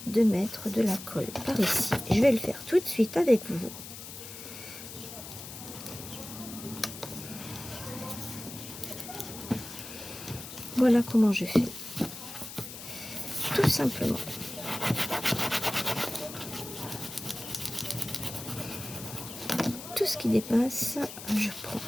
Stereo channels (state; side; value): noise; left; hiss, 12 dB below the sound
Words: de mettre de la colle par ici. Je vais le faire tout de suite avec vous. Voilà comment je fais. Tout simplement. Tout ce qui dépasse, je prends